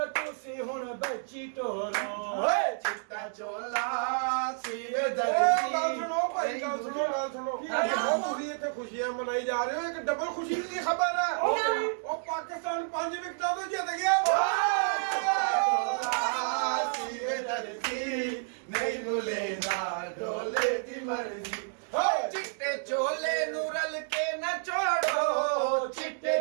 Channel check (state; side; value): silent; left; digital silence